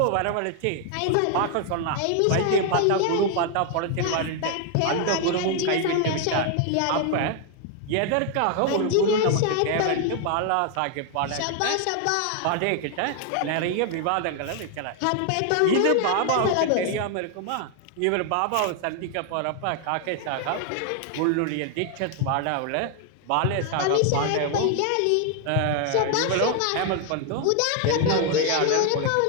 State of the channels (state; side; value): different; both; correlation 0.00